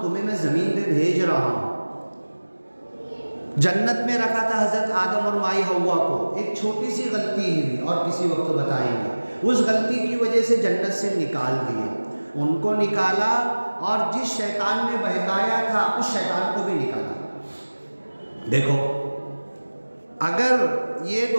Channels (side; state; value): both; inverted; correlation -1.00